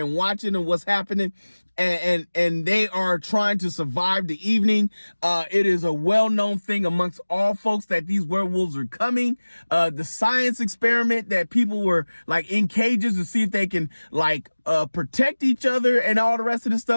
watching and what's happening. And they are trying to survive the evening. It is a well-known thing amongst all folks that these werewolves are coming. The science experiment that people were like in cages to see if they can like protect each other and all the rest of the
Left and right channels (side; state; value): both; inverted; correlation -1.00